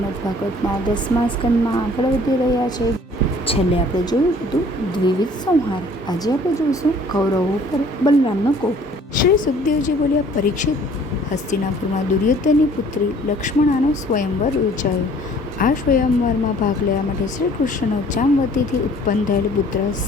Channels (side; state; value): both; normal; correlation 0.54